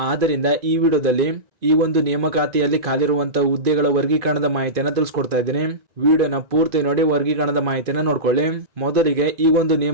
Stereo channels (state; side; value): late; left; 2.4 ms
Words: ಆದ್ದರಿಂದ ಈ ವಿಡಿಯೋದಲ್ಲಿ ಈ ಒಂದು ನೇಮಕಾತಿಯಲ್ಲಿ ಖಾಲಿರುವಂತಹ ಹುದ್ದೆಗಳ ವರ್ಗೀಕರಣದ ಮಾಹಿತಿಯನ್ನ ತಿಳಿಸ್ಕೊಡ್ತಾ ಇದ್ದೀನಿ. ವಿಡಿಯೋನ ಪೂರ್ತಿ ನೋಡಿ ವರ್ಗೀಕರಣದ ಮಾಹಿತಿಯನ್ನ ನೋಡ್ಕೊಳ್ಳಿ. ಮೊದಲಿಗೆ ಈ ಒಂದು